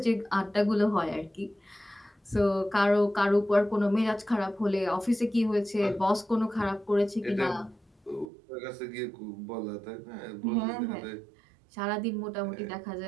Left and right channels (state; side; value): drops out; left; at 8.2 s